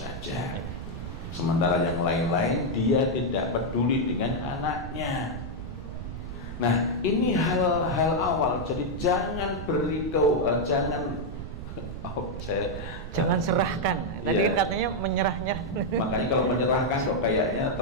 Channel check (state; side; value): noise; right; rumble, 8 dB below the sound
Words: sementara yang lain-lain dia tidak peduli dengan anaknya. Nah, ini hal-hal awal, jadi jangan jangan serahkan. Tadi ya, katanya menyerah-nyerah. Makanya kalau menyerahkan kok kayaknya